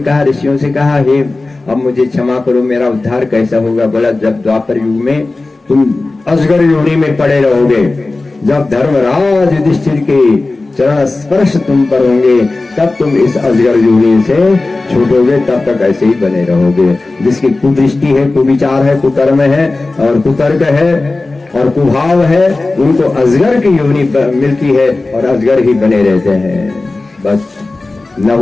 ऋषियों से कहा, हे अब मुझे क्षमा करो, मेरा उद्धार कैसा होगा? बोला जब द्वापर युग में तुम अजगर योनि में पड़े रहोगे, जब धर्मराज युधिष्ठिर के चरण स्पर्श तुम पर होंगे, तब तुम इस अजगर योनि से छूटोगे, तब तक ऐसे ही बने रहोगे। जिसकी कुदृष्टि है, कुविचार है, कुकर्म है और कुतर्क है और कुभाव है, उनको अजगर की योनि मिलती है और अजगर ही बने रहते हैं। बस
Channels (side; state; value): right; quieter; 3.3 dB